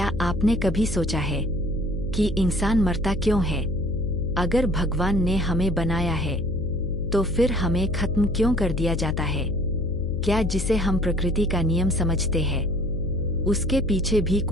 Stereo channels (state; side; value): noise; left; hum, 7 dB below the sound